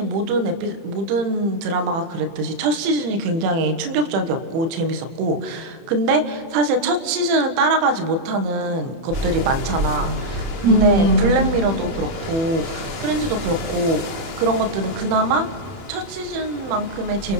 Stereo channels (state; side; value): late; left; 30 ms